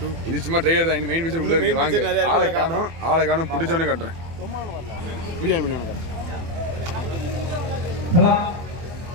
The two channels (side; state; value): left; late; 24 ms